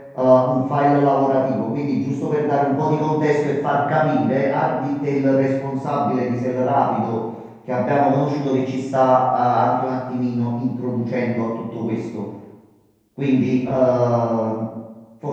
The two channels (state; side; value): identical; both; correlation 1.00